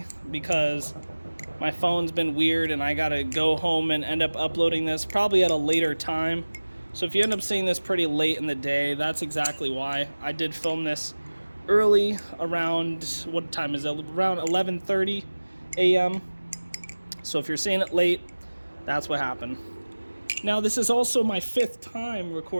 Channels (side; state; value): both; inverted; correlation -1.00